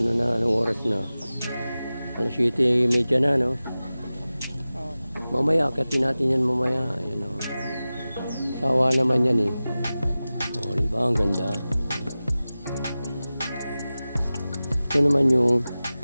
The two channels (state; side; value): inverted; both; correlation -0.96